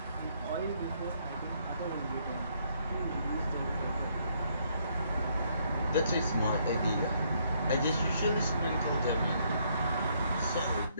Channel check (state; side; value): inverted; both; correlation -0.70